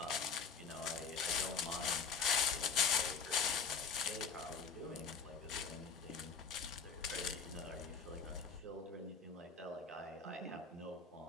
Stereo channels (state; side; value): quieter; right; 5.5 dB